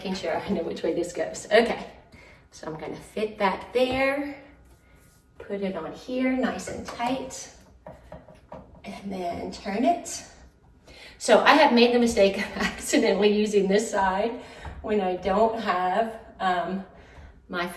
sure I know which way this goes. Okay, so I'm gonna fit that there, put it on here nice and tight, and then turn it. So I have made the mistake of accidentally using this side when I don't have my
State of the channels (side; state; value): both; identical; correlation 1.00